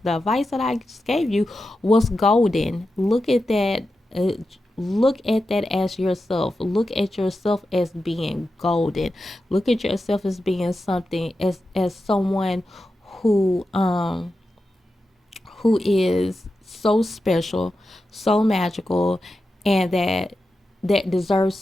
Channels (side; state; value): both; normal; correlation 0.90